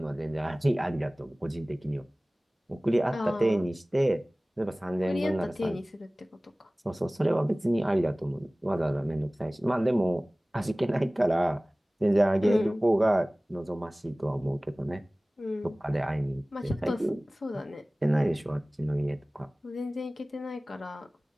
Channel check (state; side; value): normal; both; correlation 0.98